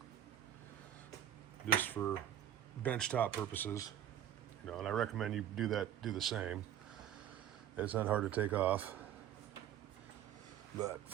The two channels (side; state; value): left; quieter; 10.5 dB